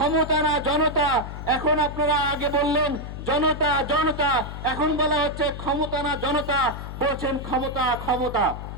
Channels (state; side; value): noise; left; hum, 9 dB below the sound